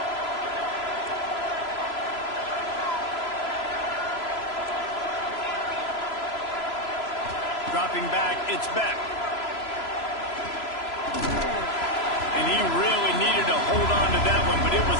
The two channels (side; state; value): right; late; 3.0 ms